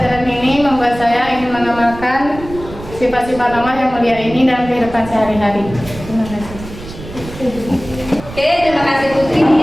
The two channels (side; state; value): right; noise; rumble, 14 dB below the sound